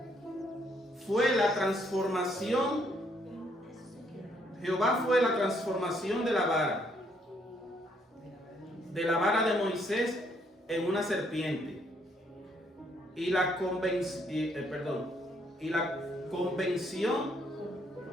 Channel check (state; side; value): normal; both; correlation 0.70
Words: fue la transformación. Jehová fue la transformación de la vara de Moisés en una serpiente. Y la convención